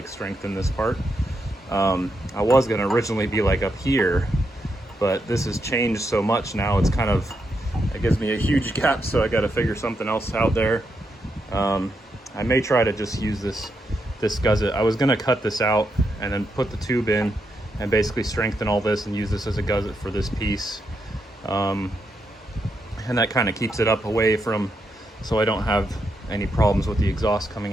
strengthen this part. I was gonna originally be like up here, but this has changed so much now, it's kind of, it gives me a huge gap, so I got to figure something else out there. I may try to just use this gusset. I was going to cut this out and then put the tube in and basically strengthen all this and use this as a gusset for this piece. And that kind of keeps it up away from, so I don't have any problems with the exhaust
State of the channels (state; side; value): normal; both; correlation 0.82